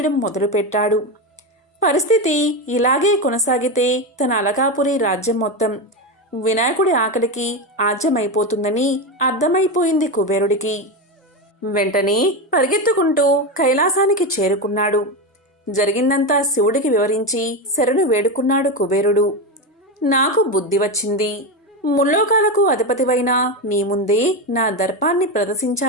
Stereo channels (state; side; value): normal; both; correlation 0.15